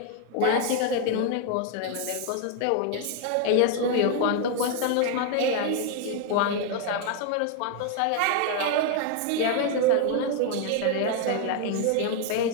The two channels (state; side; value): different; both; correlation 0.00